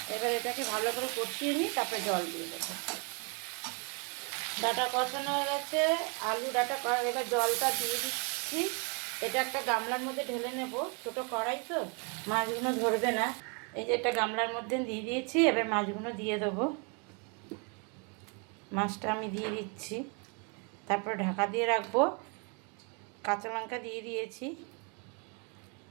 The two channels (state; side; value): quieter; left; 35.0 dB